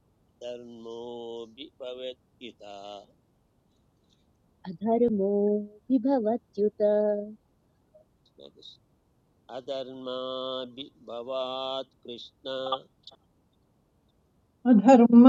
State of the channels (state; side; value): identical; both; correlation 1.00